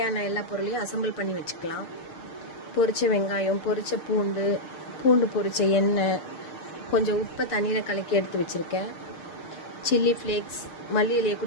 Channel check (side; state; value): right; late; 6.6 ms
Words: எல்லா பொருளையும் அசம்பிள் பண்ணி வச்சுக்கலாம். பொரிச்ச வெங்காயம், பொரிச்ச பூண்டு பொரிச்ச எண்ணெய், கொஞ்சம் உப்பை தண்ணியில் கலக்கி எடுத்து வச்சுருக்கேன். சில்லி ஃப்ளேக்ஸ், மல்லி இலையை